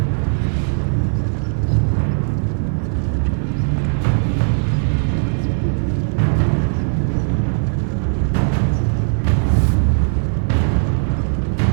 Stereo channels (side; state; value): left; silent; 61 dB below the other